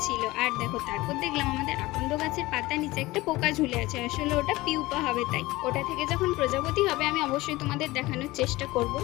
ছিল। আর দেখো, তারপর দেখলাম আমাদের আকন্দ গাছের পাতার নিচে একটা পোকা ঝুলে আছে, আসলে ওটা পিউপা হবে, তাই ওটা থেকে যখন প্রজাপতি হবে আমি অবশ্যই তোমাদের দেখানোর চেষ্টা করব।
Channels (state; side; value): quieter; right; 19.5 dB